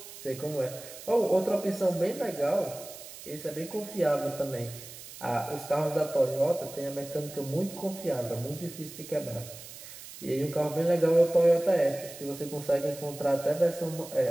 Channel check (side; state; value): right; noise; hiss, 15 dB below the sound